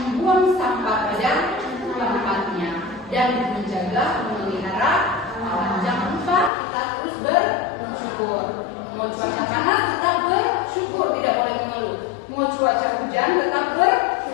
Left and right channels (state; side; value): drops out; right; at 6.5 s